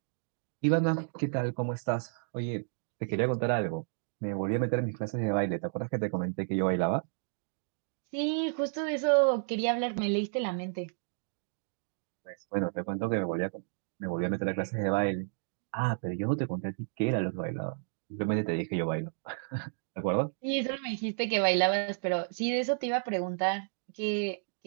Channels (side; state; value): left; silent; digital silence